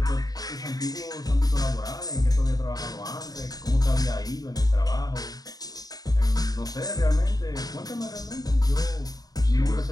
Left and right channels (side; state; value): right; late; 0.18 ms